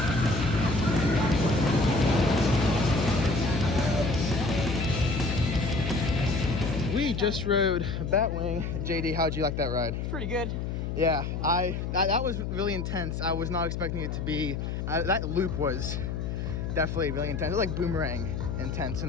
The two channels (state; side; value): noise; left; hum, 3 dB below the sound